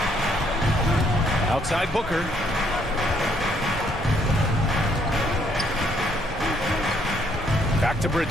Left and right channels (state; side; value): normal; both; correlation 0.68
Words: Outside Booker. Back to